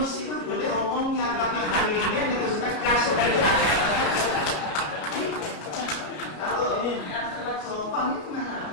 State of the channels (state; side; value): late; right; 33 ms